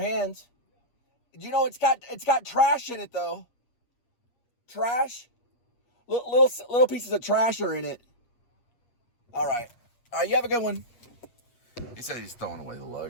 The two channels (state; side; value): late; right; 8.4 ms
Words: You know, it's got trash in it though. Trash. Little pieces of trash are in it. All right, you have a good one. He said he's throwing away the